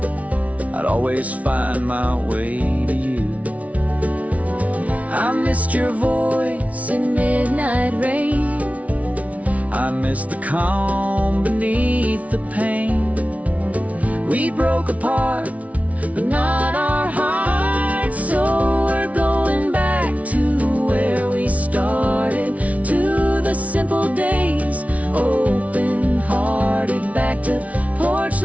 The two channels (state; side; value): late; left; 0.068 ms